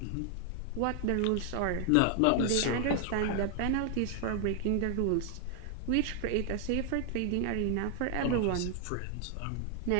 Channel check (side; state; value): both; different; correlation 0.00